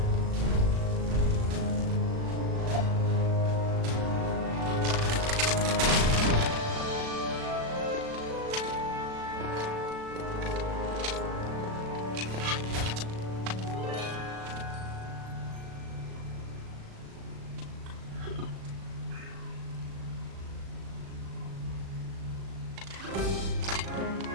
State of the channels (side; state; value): left; late; 37 ms